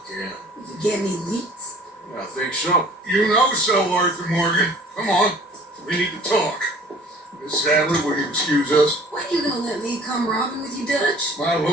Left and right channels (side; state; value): both; normal; correlation 0.50